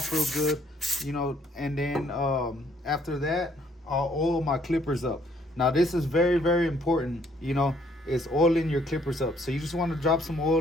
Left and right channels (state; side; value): normal; both; correlation 0.65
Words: real good, and then after that I'll oil my clippers up. Now this is very, very important, is oiling your clippers up. So you just want to drop some